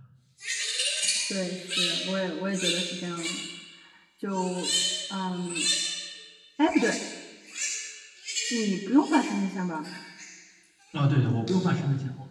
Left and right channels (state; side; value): identical; both; correlation 1.00